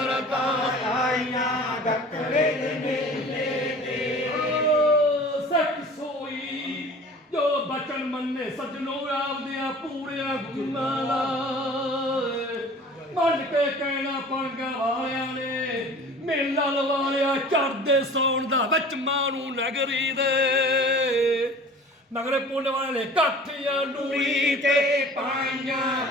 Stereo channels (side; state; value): both; normal; correlation 0.43